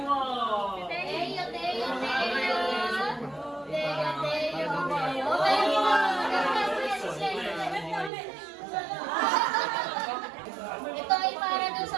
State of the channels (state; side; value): drops out; left; at 8.1 s